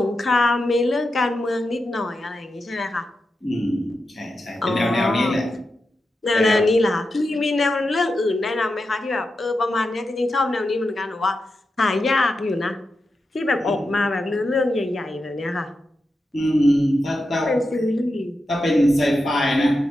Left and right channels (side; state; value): both; normal; correlation 0.89